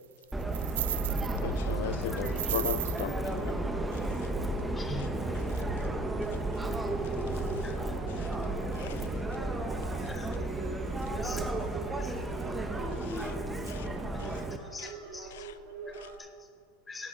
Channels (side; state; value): both; normal; correlation 0.55